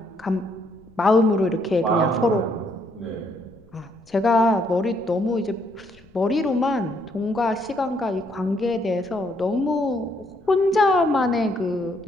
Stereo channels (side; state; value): left; noise; rumble, 28 dB below the sound